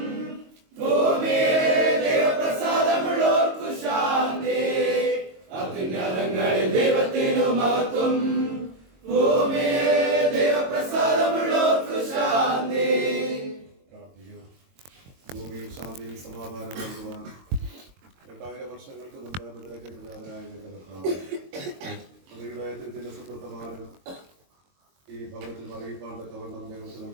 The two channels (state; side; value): late; left; 22 ms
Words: ഭൂമിയിലെ ദൈവപ്രസാദമുള്ളോർക്കു ശാന്തി. അത്യുന്നതങ്ങളിൽ ദൈവത്തിനു മഹത്വം, ഭൂമിയിലെ ദൈവപ്രസാദമുള്ളോർക്കു ശാന്തി. ഭൂമിയിൽ ശാന്തിയും സമാധാനം നൽകുവാൻ 2000 വർഷങ്ങൾക്ക് മുമ്പ് മുദ്രയ്ക്കെതിരായ ഹൃദയത്തിന്റെ സുഹൃത്തമാനം ഈ ഭവനത്തിൽ അറിയിപ്പാൻ തക്കവണ്ണം ഞങ്ങൾക്ക്